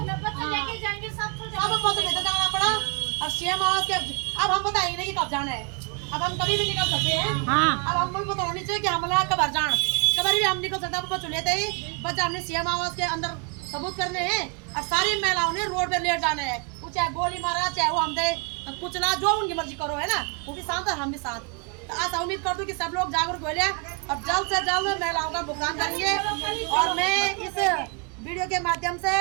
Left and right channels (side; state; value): left; quieter; 35.1 dB